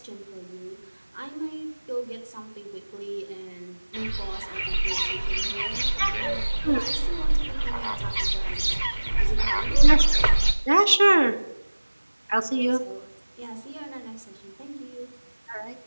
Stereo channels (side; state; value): both; inverted; correlation -1.00